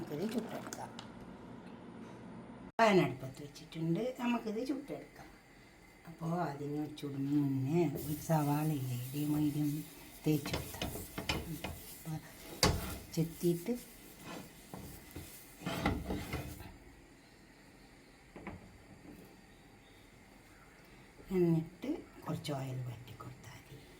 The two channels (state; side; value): identical; both; correlation 1.00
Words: ചുട്ടെടുക്കാം. പാനടുപ്പത്ത് വെച്ചിട്ടുണ്ട്. നമുക്കിത് ചുട്ടെടുക്കാം. അപ്പോൾ അതിന് ചുടുന്ന മുന്നേ ഒരു സവാളയില്ലേ മീഡിയം തേച്ച് കൊടുത്താൽ ചെത്തിയിട്ട് എന്നിട്ട് കുറച്ച് ഓയിൽ വറ്റി കൊടുത്താൽ മതി.